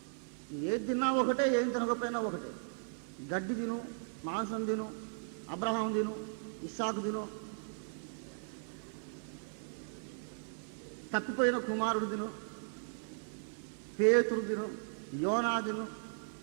ఏది తిన్నా ఒకటే, ఏం తినకపోయినా ఒకటే. గడ్డి తిను, మాంసం తిను, అబ్రహాం తిను, ఇస్సాకు తిను, తప్పిపోయిన కుమారుడు తిను, పేతురు తిను, యోనా తిను,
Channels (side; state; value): left; silent; digital silence